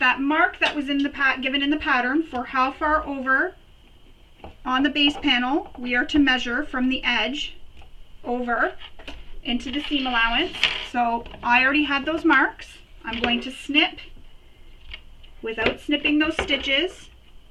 mark that was in the given in the pattern for how far over on the base panel we are to measure from the edge over into the seam allowance. So I already had those marks. I'm going to snip without snipping those stitches.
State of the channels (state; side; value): identical; both; correlation 1.00